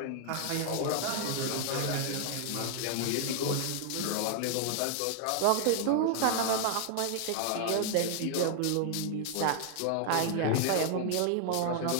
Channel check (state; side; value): different; both; correlation 0.00